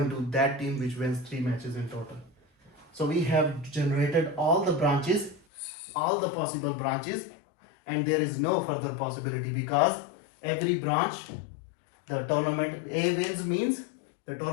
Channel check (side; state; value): right; drops out; at 5.4 s